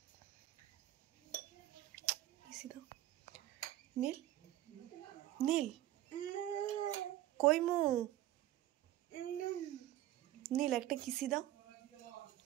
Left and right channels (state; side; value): quieter; left; 14.1 dB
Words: নীল নীল কই মু? নীল একটা কিসি দাও,